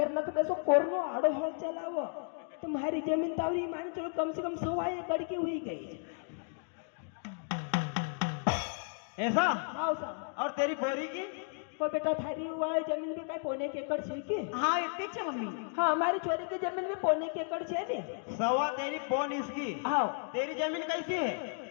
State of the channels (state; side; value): silent; right; 55 dB below the other